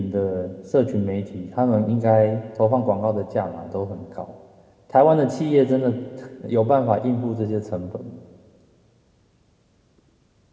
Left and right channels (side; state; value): both; identical; correlation 1.00